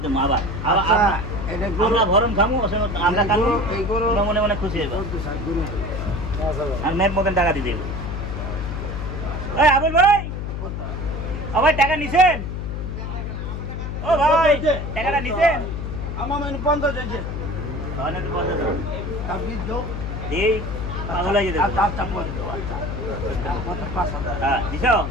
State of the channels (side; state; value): left; noise; hum, 4 dB below the sound